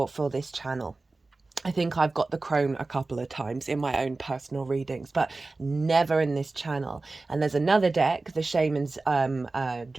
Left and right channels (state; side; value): quieter; left; 3.4 dB